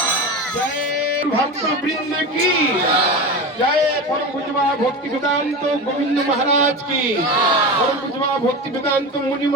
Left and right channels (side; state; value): both; normal; correlation 0.25